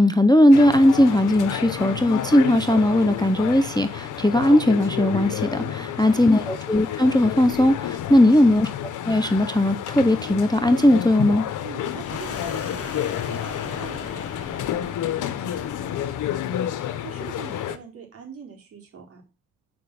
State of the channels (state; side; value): normal; both; correlation 0.83